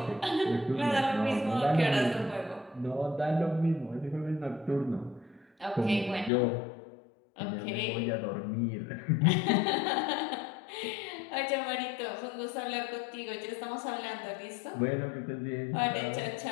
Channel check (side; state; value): right; drops out; at 6.3 s